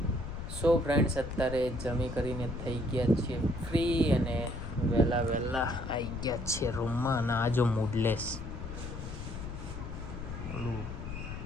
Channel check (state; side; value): noise; left; rumble, 8 dB below the sound